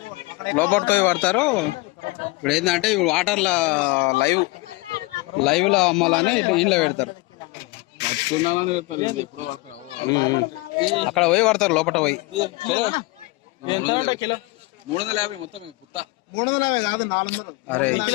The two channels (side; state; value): right; quieter; 23.5 dB